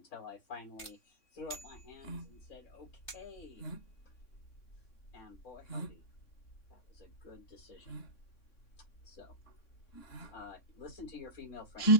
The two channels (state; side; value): late; right; 3.6 ms